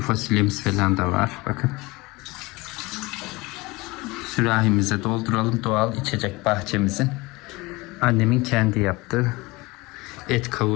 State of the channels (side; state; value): right; quieter; 22.8 dB